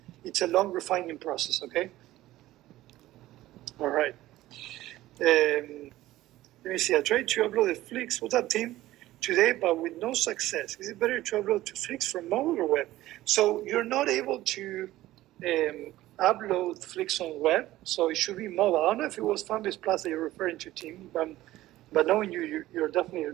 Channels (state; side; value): quieter; left; 15.8 dB